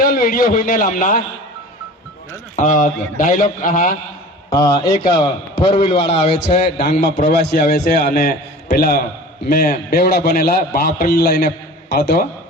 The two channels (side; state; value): both; normal; correlation 0.40